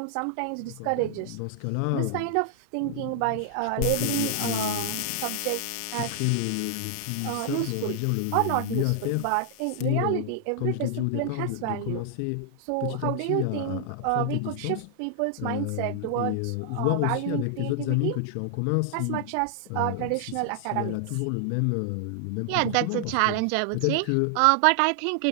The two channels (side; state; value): both; different; correlation -0.01